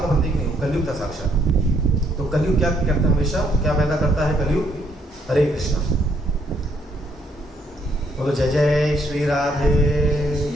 प्रतीक नहीं, कलयुग था साक्षात। तो कलयुग क्या करता है? हमेशा क्या पैदा करता है कलयुग? हरे कृष्णा। बोलो जय जय श्री राधे।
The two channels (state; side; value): normal; both; correlation 0.70